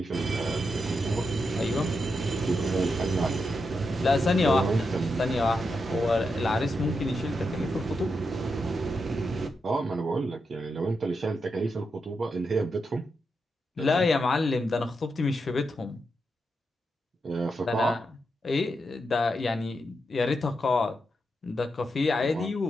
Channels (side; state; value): both; normal; correlation 0.85